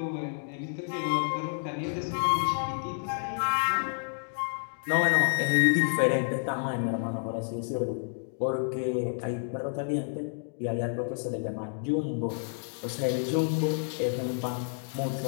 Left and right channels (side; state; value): right; silent; digital silence